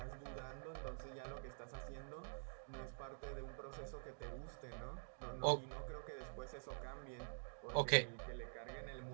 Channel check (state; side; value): silent; left; digital silence